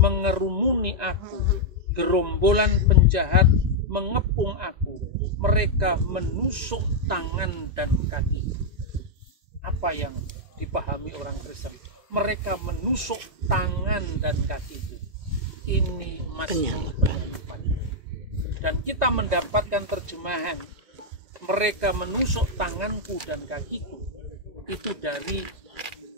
aku, gerombolan penjahat mengepung aku, mereka menusuk tangan dan kaki. Apa yang dipahami orang Kristen? Mereka menusuk tangan dan kaki. Ini Mazmur penyalipan. Dan kita mendapatkan terjemahan mereka menusuk tanganku dan kakiku, itu dari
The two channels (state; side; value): late; left; 2.1 ms